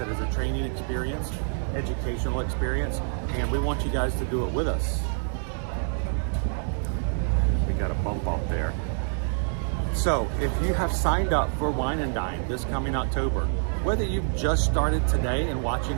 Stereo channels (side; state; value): left; silent; 60 dB below the other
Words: as a training experience, educational experience. And we want you guys to do it with us. We got a bump up there. So if you have signed up for Wine and Dine this coming October, whether you've just started today and watching